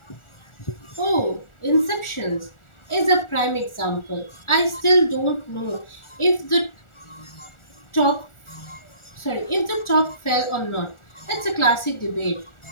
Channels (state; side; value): late; right; 1.4 ms